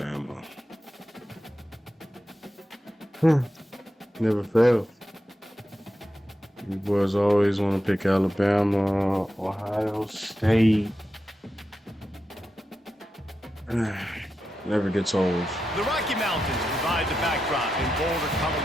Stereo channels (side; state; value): both; normal; correlation 0.89